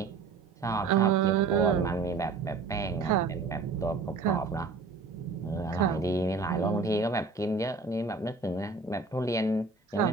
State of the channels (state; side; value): quieter; left; 4.3 dB